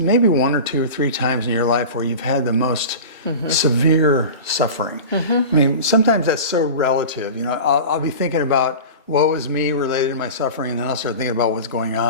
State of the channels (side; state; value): both; inverted; correlation -0.32